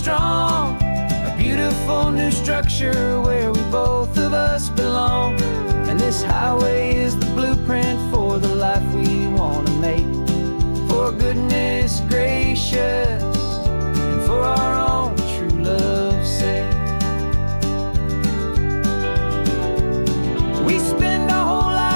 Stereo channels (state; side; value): inverted; both; correlation -1.00